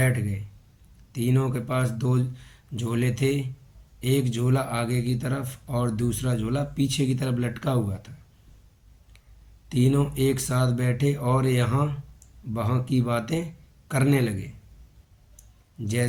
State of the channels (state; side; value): identical; both; correlation 1.00